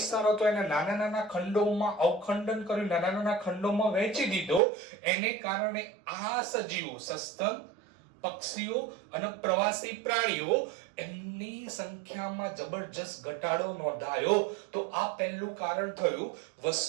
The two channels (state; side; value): drops out; left; at 4.6 s